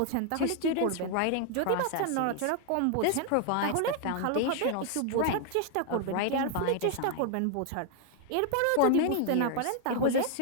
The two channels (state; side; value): different; both; correlation 0.00